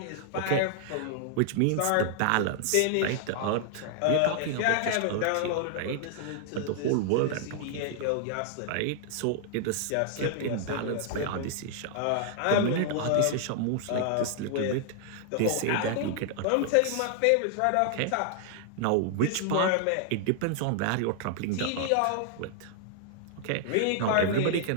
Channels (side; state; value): both; different; correlation 0.00